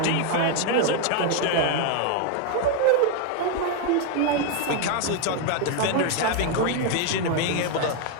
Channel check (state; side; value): different; both; correlation 0.01